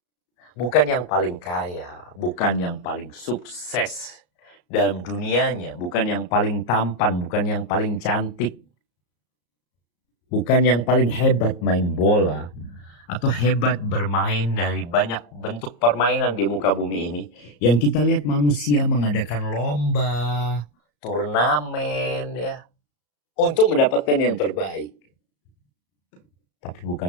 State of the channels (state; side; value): late; right; 34 ms